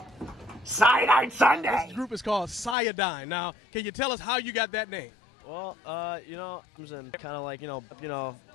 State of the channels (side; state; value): right; drops out; at 2.8 s